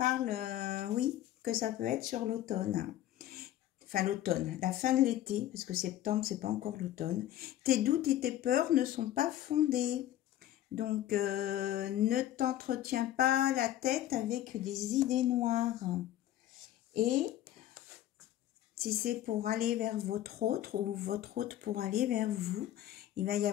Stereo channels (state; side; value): quieter; right; 12.9 dB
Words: oui, que ça peut être sur l'automne. Enfin, l'automne, la fin de l'été, parce que septembre, c'est pas encore l'automne. Tes doutes et tes peurs ne sont pas fondés. Donc, ne t'entretiens pas la tête avec des idées noires. Et si c'est pour aller vers votre autre ou votre autre pour aller vers vous, il va y